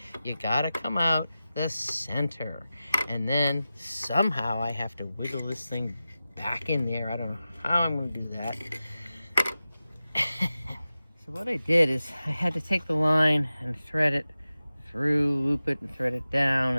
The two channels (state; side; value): inverted; both; correlation -0.94